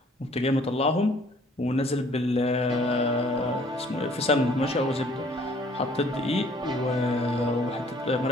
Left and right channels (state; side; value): normal; both; correlation 0.58